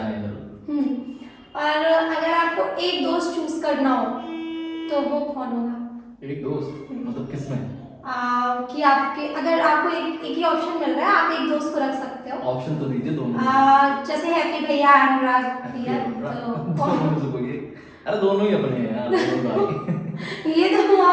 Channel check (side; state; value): both; identical; correlation 1.00